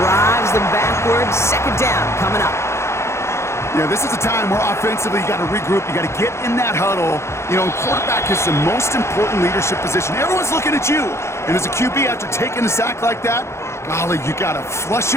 them backwards. Second down coming up. Yeah, this is a time where offensively you got to regroup. You got to get in that huddle. You know, quarterback is the most important leadership position. Everyone's looking at you. And as a QB, after taking a sack like that, golly, you got to flush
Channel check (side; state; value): right; late; 0.13 ms